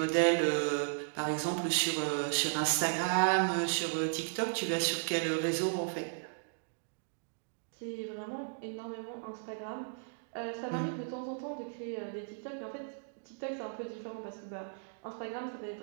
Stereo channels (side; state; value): left; silent; digital silence